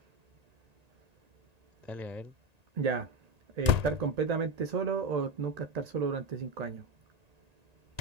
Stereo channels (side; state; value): left; late; 1.9 ms